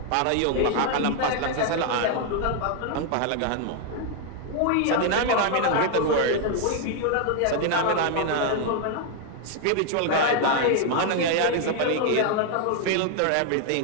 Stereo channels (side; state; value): both; different; correlation 0.00